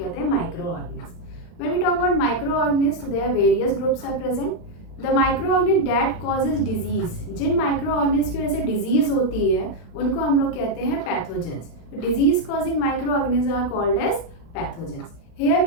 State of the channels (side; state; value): right; late; 36 ms